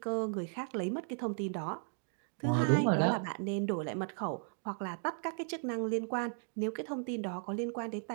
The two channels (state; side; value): silent; left; 54 dB below the other